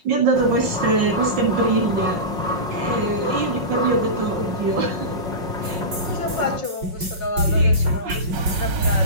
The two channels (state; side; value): late; left; 5.4 ms